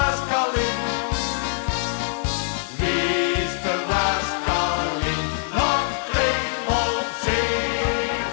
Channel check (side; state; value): right; silent; 63 dB below the other